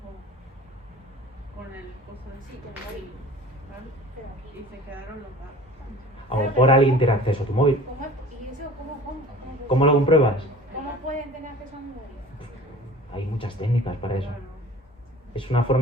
con el coso de Sí, con el móvil. ¿vale? Pero aquí. Y se quedaron los datos. A lo mejor alguien tiene acceso a tu móvil. ¿Y eso cómo? ¿Cómo lo compruebas? ¿Cómo pueden tener acceso a mi móvil? Hay muchas técnicas para eso. Claro. Es una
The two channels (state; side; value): normal; both; correlation 0.44